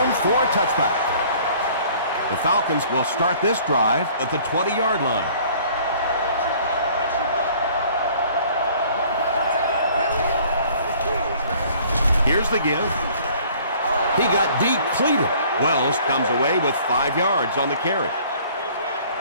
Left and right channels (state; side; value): inverted; both; correlation -0.54